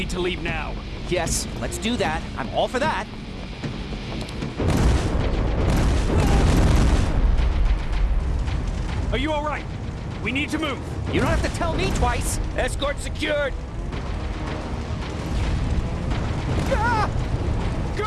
to leave now. Yes, let's do that. I'm all for that. Are you alright? We need to move. You don't have to tell me twice. Escort secured. Ah!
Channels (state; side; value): identical; both; correlation 1.00